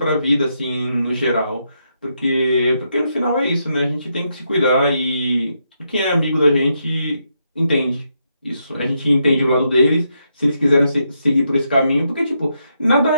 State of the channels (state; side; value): inverted; both; correlation -0.80